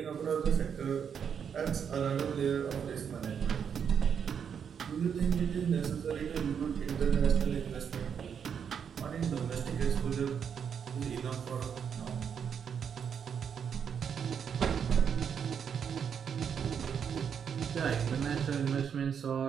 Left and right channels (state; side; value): quieter; left; 7.4 dB